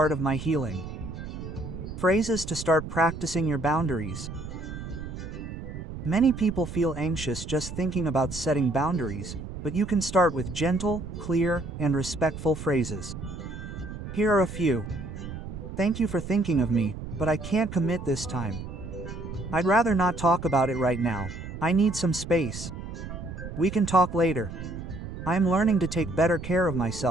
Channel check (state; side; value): noise; right; rumble, 9 dB below the sound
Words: of my healing. Phrases to start practicing your boundaries. Many people feel anxious just thinking about setting boundaries, but you can start with gentle, clear, and respectful phrases. Here are a few. Thank you for thinking of me, but I can't commit this time. I'd rather not talk about it right now. I need some space. We can talk later. I am learning to take better care of